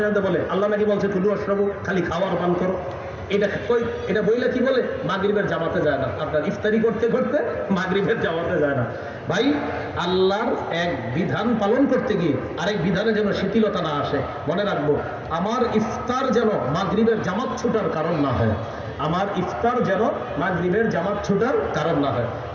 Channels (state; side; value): identical; both; correlation 1.00